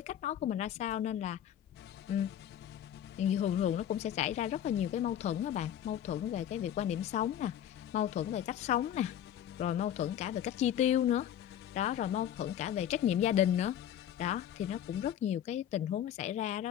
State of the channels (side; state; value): right; quieter; 10.4 dB